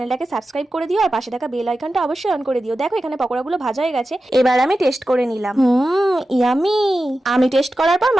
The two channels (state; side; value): normal; both; correlation 0.93